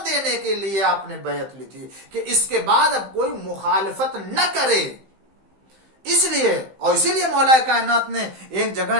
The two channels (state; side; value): late; left; 15 ms